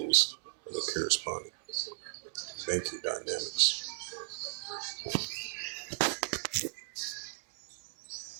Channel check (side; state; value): left; silent; digital silence